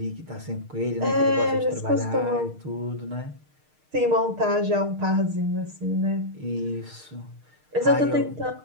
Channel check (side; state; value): left; late; 6.5 ms